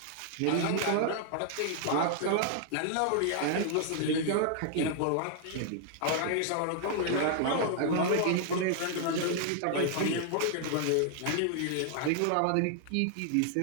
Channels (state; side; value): different; both; correlation 0.00